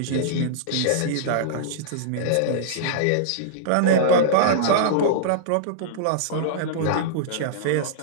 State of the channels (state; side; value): different; both; correlation -0.03